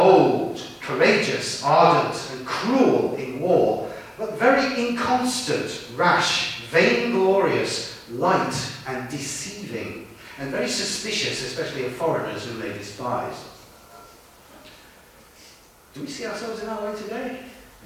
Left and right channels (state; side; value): identical; both; correlation 1.00